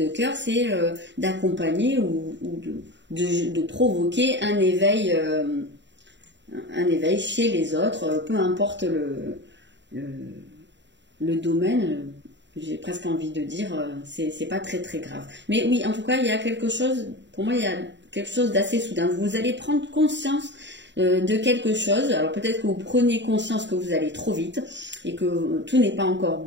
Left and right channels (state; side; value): late; left; 0.52 ms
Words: cœur, c'est d'accompagner ou de provoquer un éveil chez les autres, peu importe le domaine. J'ai presque envie de dire, c'est pas très très grave. Mais oui, en tout cas, il y a quelque chose, pour moi, il y a quelque chose d'assez soudain. Vous allez prendre conscience de quelque chose. Alors peut-être que vous prenez conscience que vous allez trop vite et que tout n'est pas encore